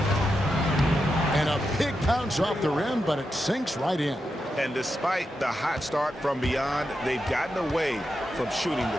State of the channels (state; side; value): normal; both; correlation 0.87